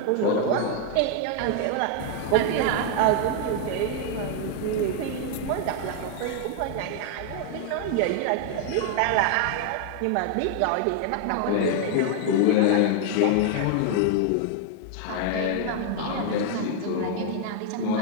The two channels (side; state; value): both; different; correlation 0.00